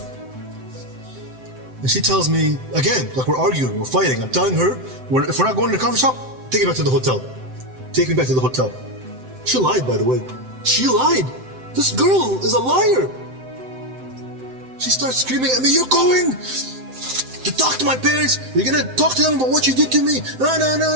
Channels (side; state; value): left; late; 7.8 ms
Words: And she tells me, again, like we're arguing, we're fighting. I'm telling her, if we're not going to the coffee shop, take me back to the hotel. Take me back to the hotel. She lied, by the way. She lied. This girl is a liar. She starts screaming at me, you're going to talk to my parents. You're going to talk to them about what you did to me.